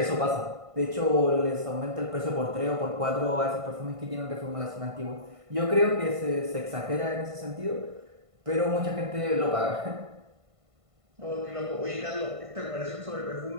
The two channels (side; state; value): left; late; 1.5 ms